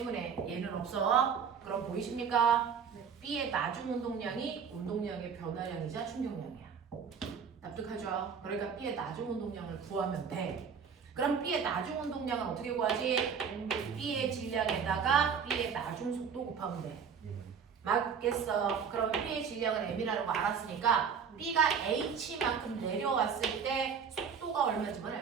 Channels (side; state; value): left; quieter; 6.7 dB